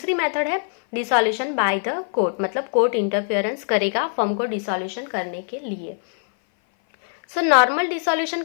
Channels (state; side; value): silent; right; 58 dB below the other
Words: मेथड है डिसॉल्यूशन बाय द कोर्ट, मतलब कोर्ट इंटरफियरेंस करेगा फर्म को डिसॉल्यूशन करने के लिए। सो नॉर्मल डिसॉल्यूशन